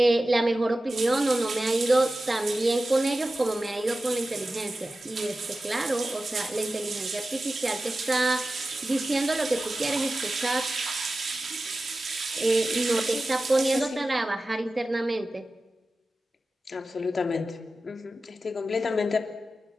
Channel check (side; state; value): both; normal; correlation 0.94